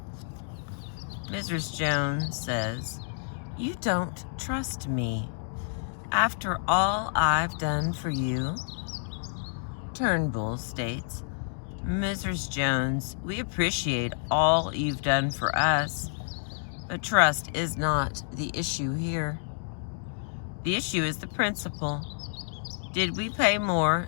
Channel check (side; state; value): right; silent; digital silence